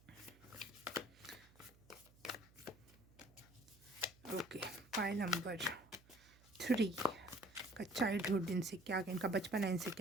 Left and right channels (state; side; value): noise; right; hum, 26 dB below the sound